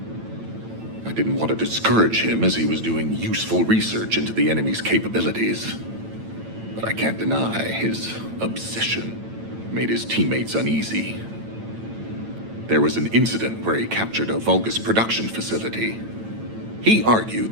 I didn't want to discourage him as he was doing useful research into the enemy's capabilities. But I can't deny his obsession made his teammates uneasy. There was an incident where he captured a Vulgus production facility. He argued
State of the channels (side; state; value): left; late; 9.0 ms